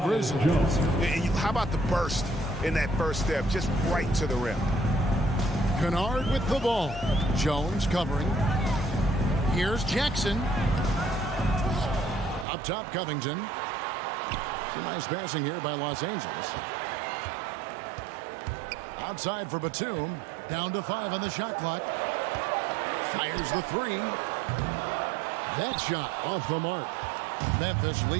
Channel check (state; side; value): drops out; left; at 12.5 s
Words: How about the burst in that first step, just right to the rim? Kennard with the ball. Jones covering. Here's Jackson. Up top, Covington. Some nice passing here by Los Angeles. Outside for Batum. Down to 5 on the shot clock. Fires the 3. That shot off the mark. Memphis